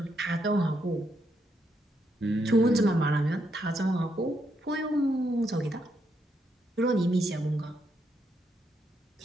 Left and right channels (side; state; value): both; normal; correlation 0.78